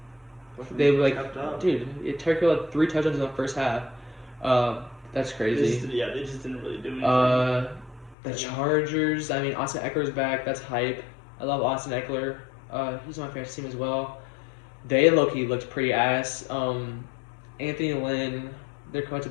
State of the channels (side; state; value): right; drops out; at 8.2 s